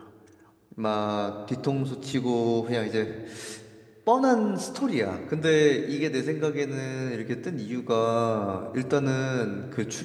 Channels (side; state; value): both; identical; correlation 1.00